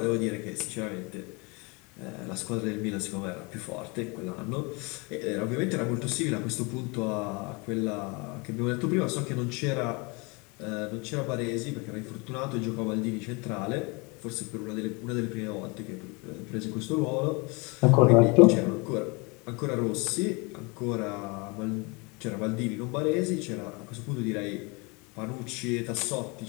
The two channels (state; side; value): quieter; right; 28.8 dB